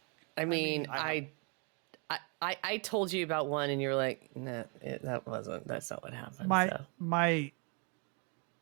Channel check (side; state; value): left; quieter; 35.0 dB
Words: I mean, I told you about one, and you were like, "No, that's not what happened." My